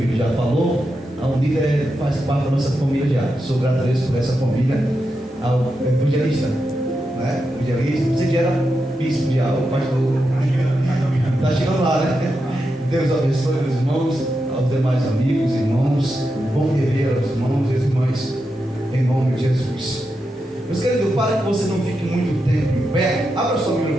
já falou, a Unida faz parte da nossa família já. Sou grato a Deus por essa família. Ao evangelista, evangelista, você já era bispo de algo, pastor. Está chegando lá, né? Deus abençoe os irmãos, aos demais amigos, irmãos. Bom rever aos irmãos e as irmãs, em nome de Jesus. Meus queridos, para que você não fique muito tempo em pé, abra sua Bíblia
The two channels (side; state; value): both; normal; correlation 0.87